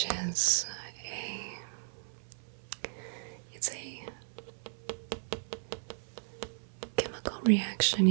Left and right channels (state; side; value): silent; left; 54 dB below the other